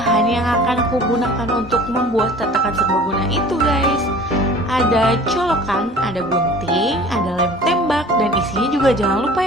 yang akan aku gunakan untuk membuat tatakan serbaguna itu guys. Ada colokan, ada gunting, ada lem tembak, dan isinya juga jangan lupa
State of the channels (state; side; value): normal; both; correlation 0.45